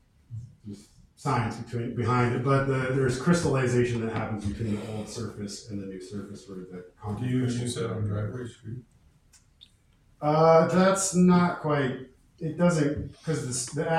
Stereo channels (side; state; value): both; identical; correlation 1.00